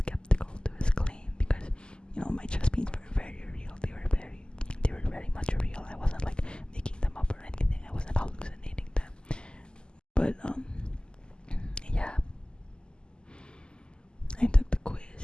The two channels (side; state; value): right; late; 0.048 ms